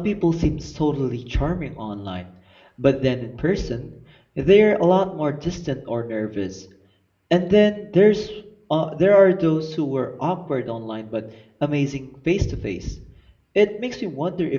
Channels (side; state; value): both; identical; correlation 1.00